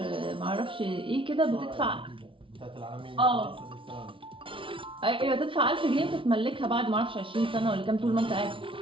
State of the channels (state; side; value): late; left; 0.25 ms